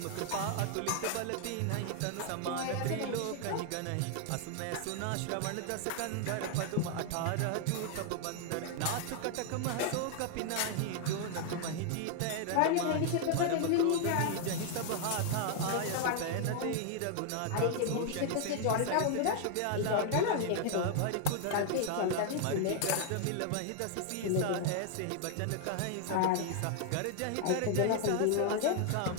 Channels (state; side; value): different; both; correlation 0.00